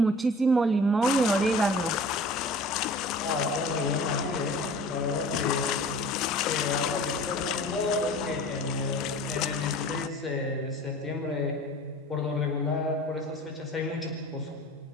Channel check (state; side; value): normal; both; correlation 0.44